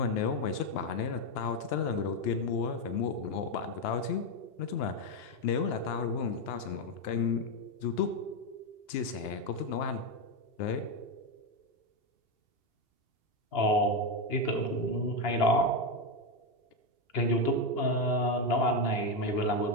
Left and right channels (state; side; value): late; right; 2.8 ms